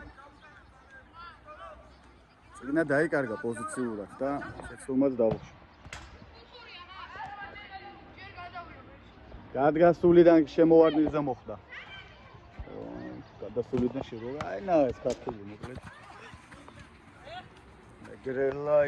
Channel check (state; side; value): identical; both; correlation 1.00